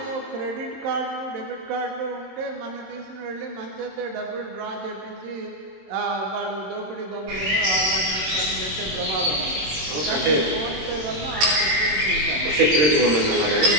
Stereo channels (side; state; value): left; late; 26 ms